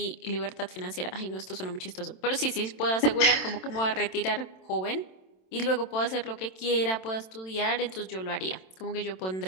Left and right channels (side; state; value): right; late; 27 ms